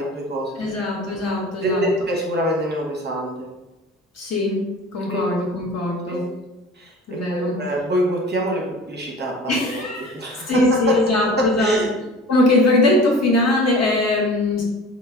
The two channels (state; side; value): normal; both; correlation 0.40